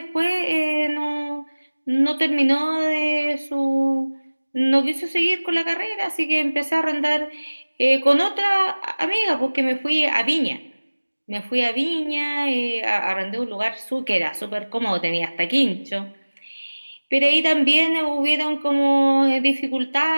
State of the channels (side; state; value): both; inverted; correlation -1.00